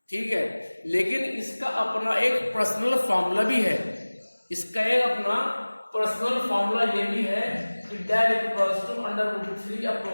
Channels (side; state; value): both; inverted; correlation -1.00